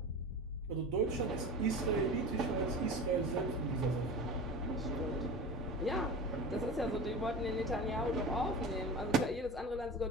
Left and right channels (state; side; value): normal; both; correlation 0.32